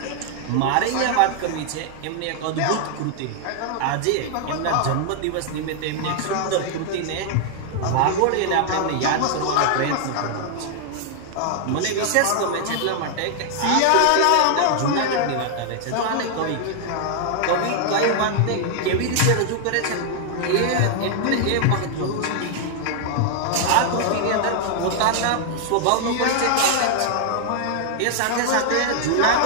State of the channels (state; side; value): different; both; correlation 0.00